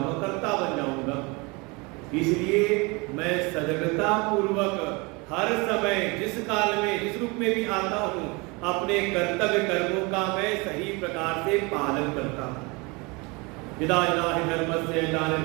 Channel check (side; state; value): left; quieter; 27.4 dB